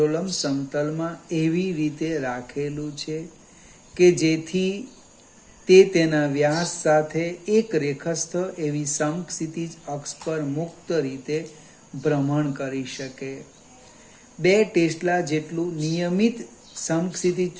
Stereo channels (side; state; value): both; identical; correlation 1.00